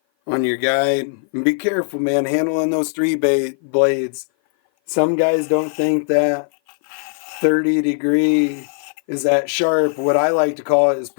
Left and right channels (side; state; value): right; silent; 56 dB below the other